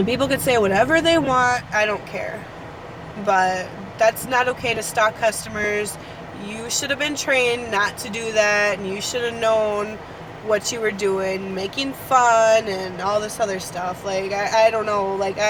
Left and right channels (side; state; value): both; identical; correlation 1.00